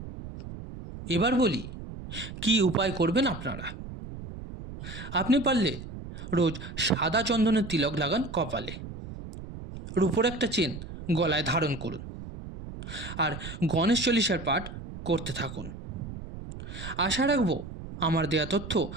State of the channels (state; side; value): noise; right; rumble, 11 dB below the sound